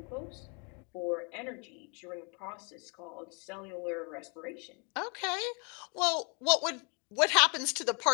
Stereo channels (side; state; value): right; quieter; 34.2 dB